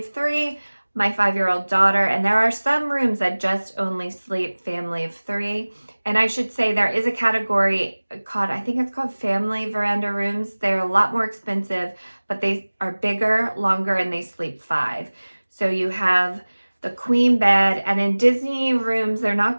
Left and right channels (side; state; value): both; inverted; correlation -1.00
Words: 3, my 5-year-old daughter, and there are some rooms that just only sleep family of 3. And I should say there is a category called, I think it's called family veranda rooms. They're a lot more expensive, but they are bigger, longer, and they sleep 5. So you have the queen bed, and in Disney rooms, they're